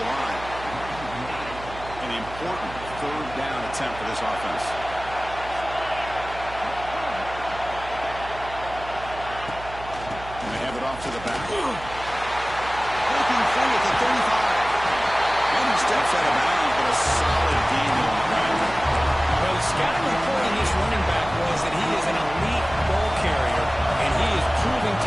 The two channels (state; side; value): noise; right; hum, 14 dB below the sound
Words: line. An important third down attempt for this offense. And they have it off to the back. Breaking free at the 35. And he steps out of bounds, but a solid gain on the ground. Well, the scouting report on this running back was that he is an elite ball carrier, and he is proving